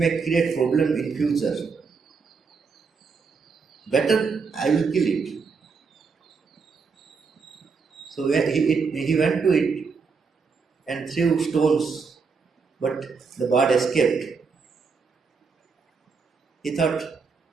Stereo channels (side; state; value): left; quieter; 5.2 dB